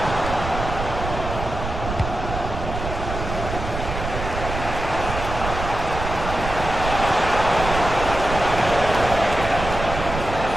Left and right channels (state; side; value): noise; right; rumble, 6 dB below the sound